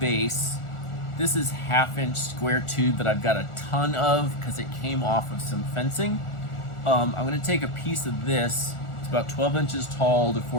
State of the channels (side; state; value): right; late; 1.4 ms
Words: This is 1/2-inch square tube that I've got a ton of because it came off of some fencing. I'm gonna take a piece of this, it's about 12 inches tall to